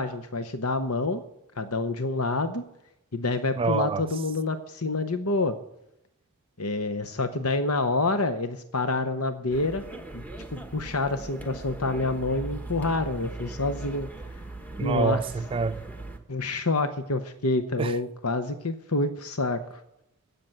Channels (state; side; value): normal; both; correlation 0.04